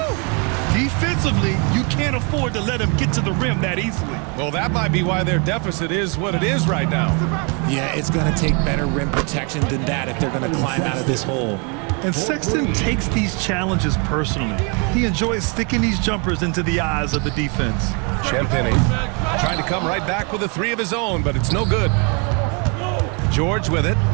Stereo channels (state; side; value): quieter; left; 34.4 dB